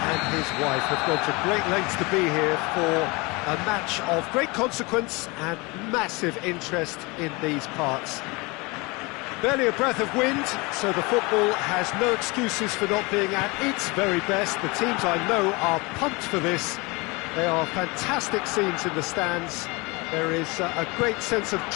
his wife have gone to great lengths to be here for a match of great consequence and massive interest in these parts. Barely a breath of wind, so the football has no excuses for not being at its very best. The teams I know are pumped for this. They are fantastic scenes in the stands. There is a great sense of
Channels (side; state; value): right; quieter; 26.0 dB